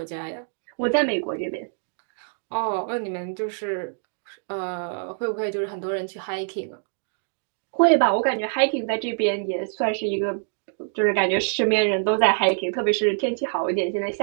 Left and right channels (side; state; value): left; silent; digital silence